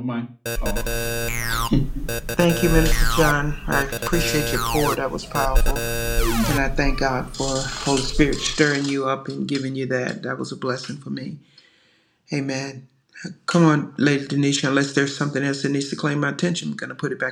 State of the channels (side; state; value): both; identical; correlation 1.00